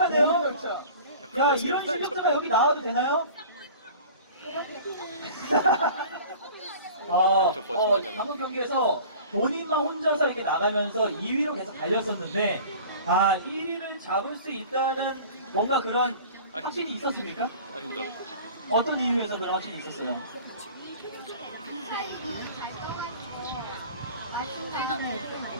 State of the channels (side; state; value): both; inverted; correlation -0.42